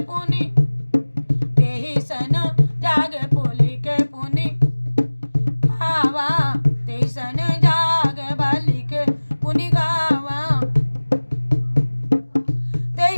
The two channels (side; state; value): both; inverted; correlation -1.00